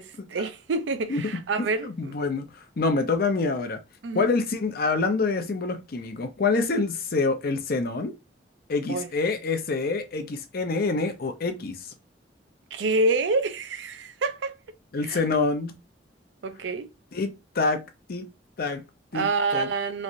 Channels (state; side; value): normal; both; correlation 0.06